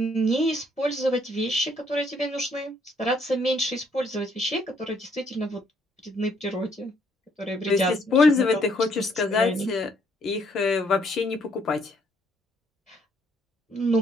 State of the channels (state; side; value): normal; both; correlation 0.68